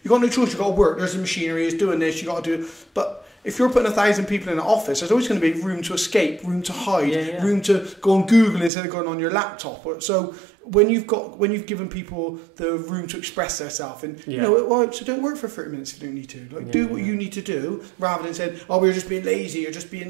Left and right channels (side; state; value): left; drops out; at 8.7 s